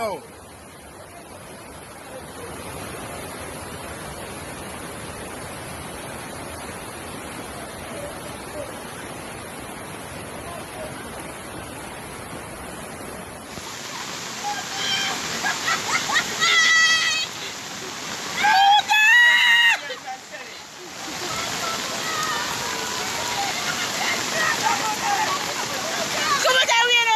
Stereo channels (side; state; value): both; identical; correlation 1.00